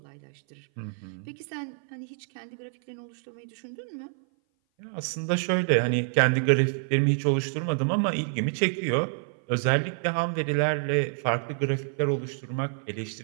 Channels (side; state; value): left; silent; 57 dB below the other